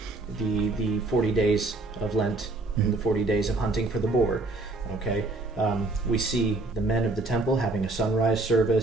40 days of Lent and the 40 days of hunting for the boar. Okay, we see the men of the temple having a sunrise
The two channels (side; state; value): left; quieter; 3.1 dB